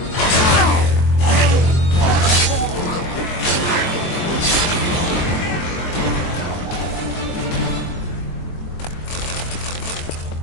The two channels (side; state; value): right; late; 23 ms